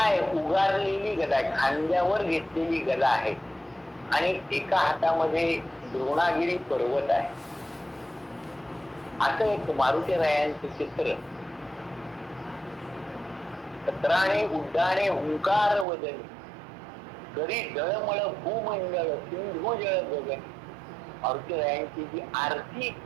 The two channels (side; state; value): left; drops out; at 15.9 s